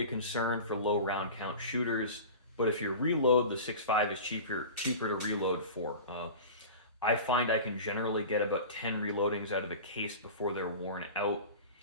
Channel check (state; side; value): inverted; both; correlation -0.34